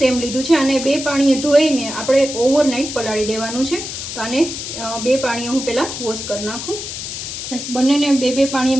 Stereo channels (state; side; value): noise; left; hiss, 7 dB below the sound